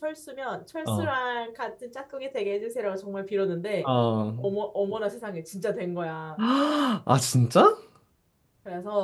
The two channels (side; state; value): both; identical; correlation 1.00